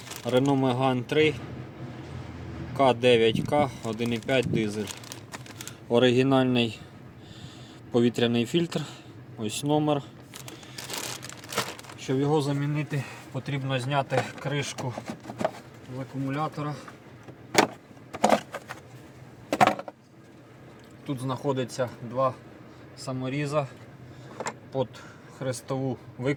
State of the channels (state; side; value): identical; both; correlation 1.00